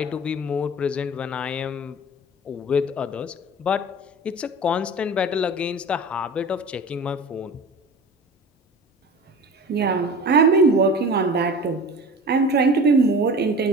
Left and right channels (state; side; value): normal; both; correlation 0.37